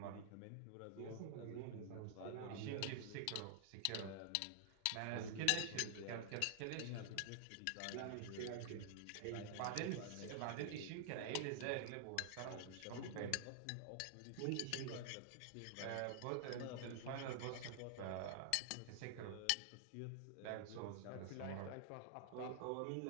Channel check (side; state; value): both; different; correlation -0.01